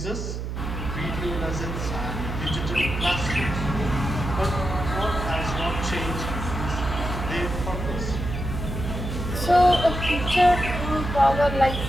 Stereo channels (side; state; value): right; noise; hum, 5 dB below the sound